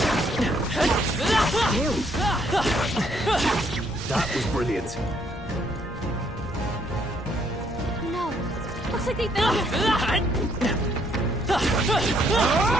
That was brilliant. No. Looks like they found us.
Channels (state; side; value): normal; both; correlation 0.69